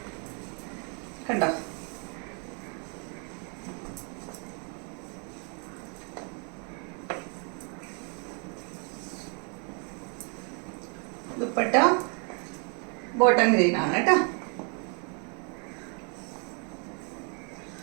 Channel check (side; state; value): left; quieter; 38.0 dB